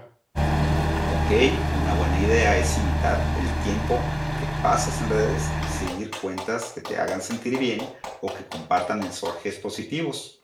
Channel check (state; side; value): identical; both; correlation 1.00